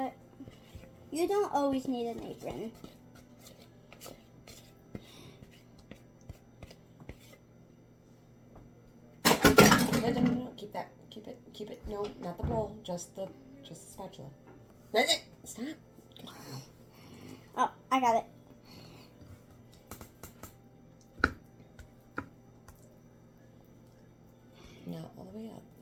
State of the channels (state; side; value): identical; both; correlation 1.00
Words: you don't always need an apron. No. Keep that. Keep it. No, not the bowl. Just the spatula. Stop. Oh, I got it. No, all the way up.